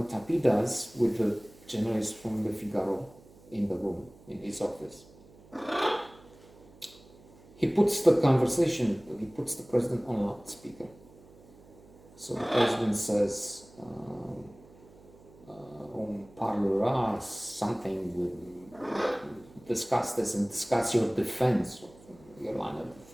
Tapie does with the journalist from Le Figaro in the room, in his office, he puts the president on loudspeaker. So the president says, on parlera something, we'll discuss this and discuss your defense, your line of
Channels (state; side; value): noise; right; hum, 24 dB below the sound